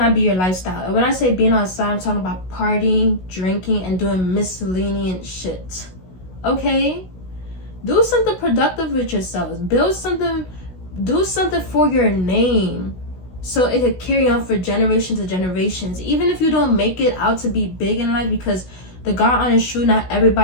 be your lifestyle. And when I say being outside, I'm talking about partying, drinking, and doing miscellaneous shit. Okay? Do something productive with yourselves. Build something, do something for your name, so it could carry on for generations to generations. Even if you don't make it out to be big in life, because the God honest truth, not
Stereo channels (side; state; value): right; late; 16 ms